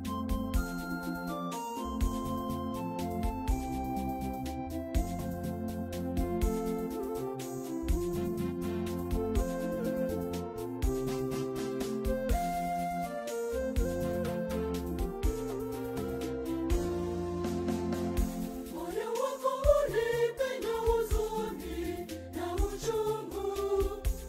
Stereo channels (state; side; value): identical; both; correlation 1.00